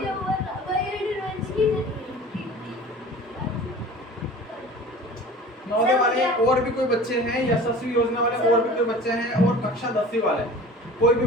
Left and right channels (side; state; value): both; normal; correlation 0.41